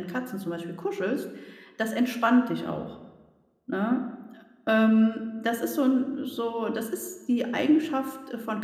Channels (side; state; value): both; identical; correlation 1.00